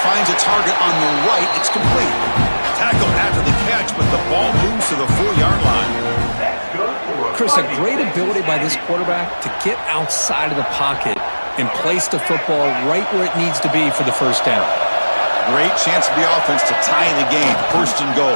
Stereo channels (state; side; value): inverted; both; correlation -1.00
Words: finds a target on the right. It's complete. Tackled after the catch, but the ball moves to the 4-yard line. Chris, a great ability by this quarterback to get outside of the pocket and place the football right where it needs to be for the first down. Great chance for the offense to tie the game. 1st and goal.